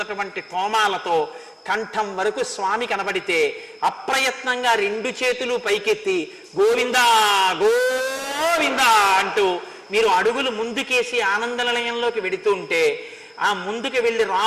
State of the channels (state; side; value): identical; both; correlation 1.00